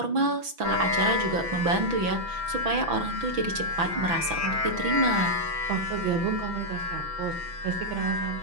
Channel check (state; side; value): late; left; 6.0 ms